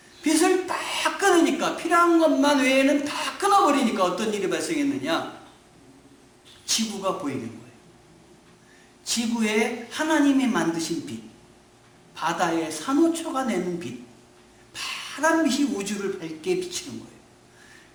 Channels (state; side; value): identical; both; correlation 1.00